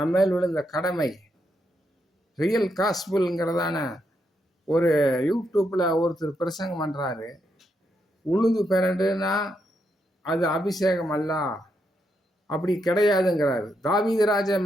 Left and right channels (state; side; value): normal; both; correlation 0.80